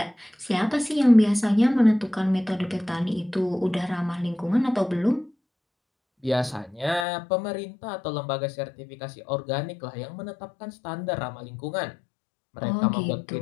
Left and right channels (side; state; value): right; drops out; at 7.1 s